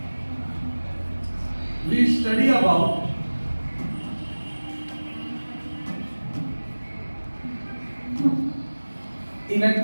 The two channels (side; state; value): both; inverted; correlation -1.00